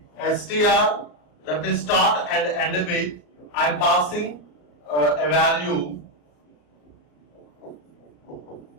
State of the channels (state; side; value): late; right; 34 ms